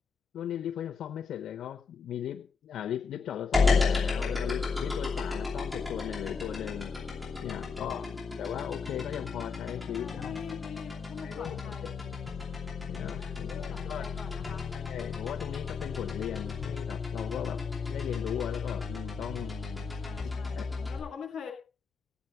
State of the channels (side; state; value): right; quieter; 5.4 dB